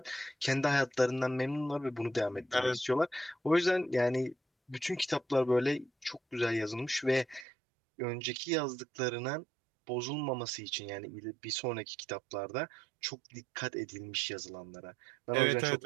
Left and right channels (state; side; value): drops out; left; at 7.5 s